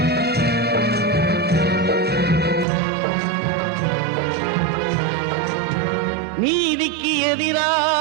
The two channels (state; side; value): drops out; left; at 2.7 s